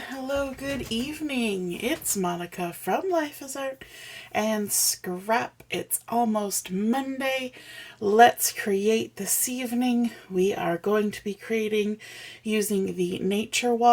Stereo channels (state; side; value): identical; both; correlation 1.00